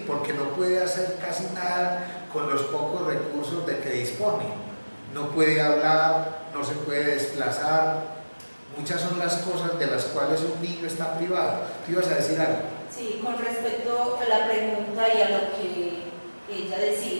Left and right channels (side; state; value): both; inverted; correlation -1.00